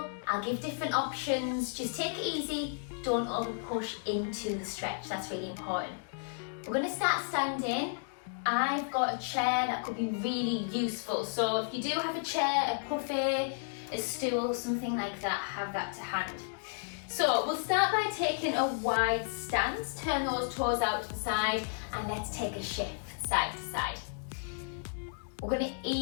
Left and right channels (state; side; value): silent; right; digital silence